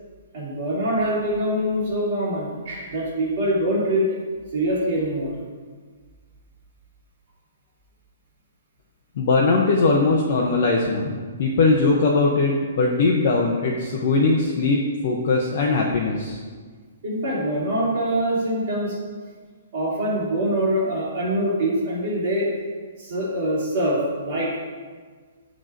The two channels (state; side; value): inverted; both; correlation -0.40